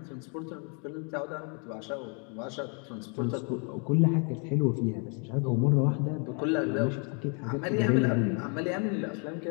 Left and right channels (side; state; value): right; quieter; 37.9 dB